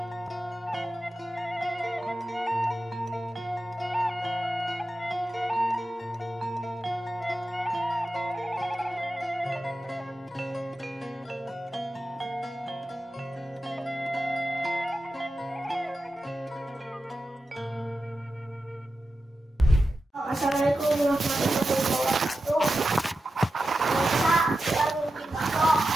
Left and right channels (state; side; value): normal; both; correlation 0.91